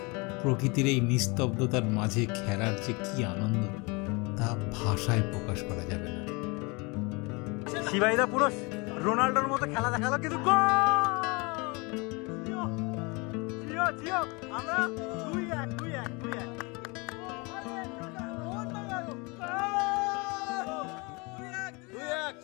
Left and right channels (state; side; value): quieter; right; 28.1 dB